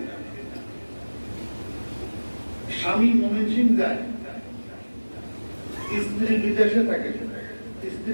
স্বামী ময়মনসিংহ যায়, স্ত্রী বিদেশে থাকে,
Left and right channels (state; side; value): inverted; both; correlation -1.00